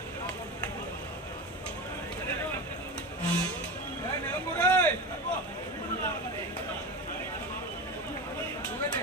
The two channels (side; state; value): both; normal; correlation 0.25